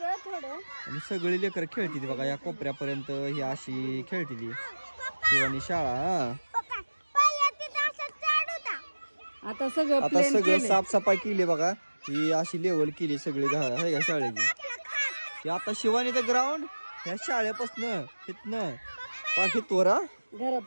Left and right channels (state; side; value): inverted; both; correlation -1.00